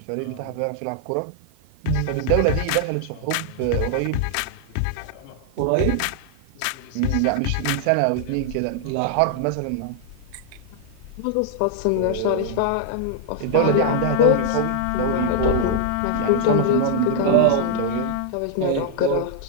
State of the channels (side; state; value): both; different; correlation -0.01